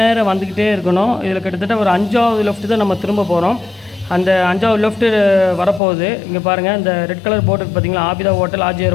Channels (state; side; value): drops out; right; at 5.8 s